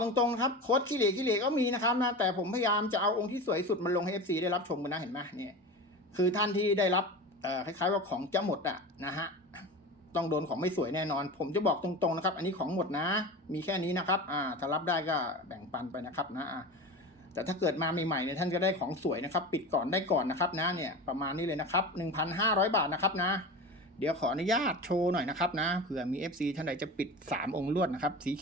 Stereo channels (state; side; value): normal; both; correlation 0.29